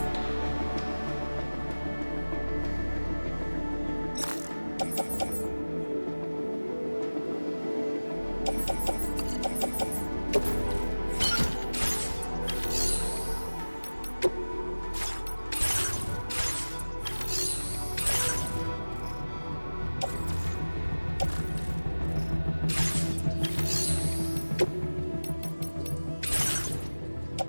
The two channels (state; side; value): inverted; both; correlation -1.00